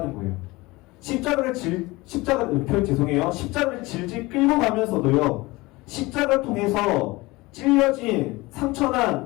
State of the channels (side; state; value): right; quieter; 21.8 dB